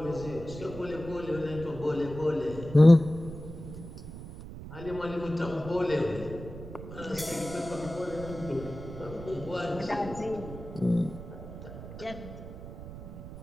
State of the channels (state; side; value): noise; right; rumble, 12 dB below the sound